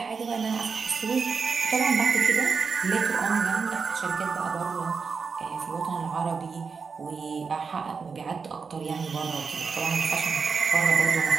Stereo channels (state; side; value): quieter; left; 5.3 dB